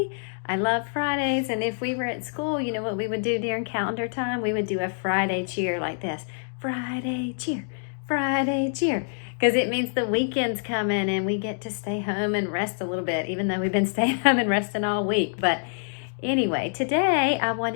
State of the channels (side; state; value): right; silent; digital silence